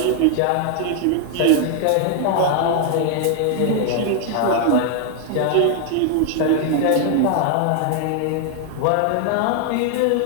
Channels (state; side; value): different; both; correlation 0.00